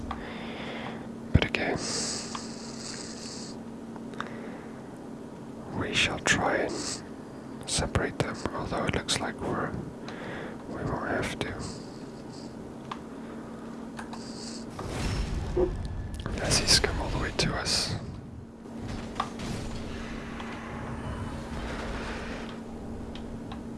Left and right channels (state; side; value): identical; both; correlation 1.00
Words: but again, we shall try and separate them, although it looks like we won't have to. As he's come all the way to us.